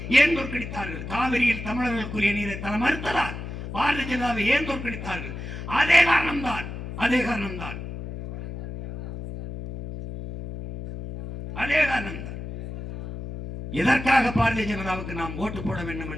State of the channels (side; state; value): left; noise; hum, 8 dB below the sound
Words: ஏன் தோற்கடித்தார்கள்? காவிரியில் தமிழர்களுக்குரிய நீரை தர மறுத்ததால். பாரதிய ஜனதாவை ஏன் தோற்கடித்தார்கள்? அதே காரணம்தான். எதற்காக பாரதிய ஜனதாவுக்கு நாம் ஓட்டு போட வேண்டும்